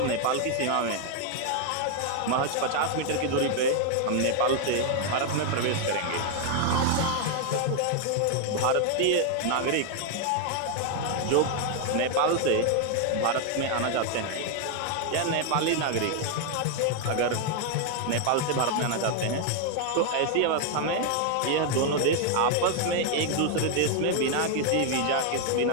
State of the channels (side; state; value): both; different; correlation 0.00